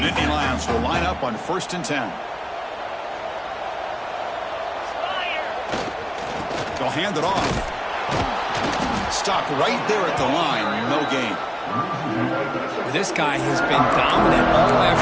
Nittany Lions will line up on 1st and 10. They'll hand it off. Stopped right there at the line, no gain. This guy has been dominant all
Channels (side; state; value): both; identical; correlation 1.00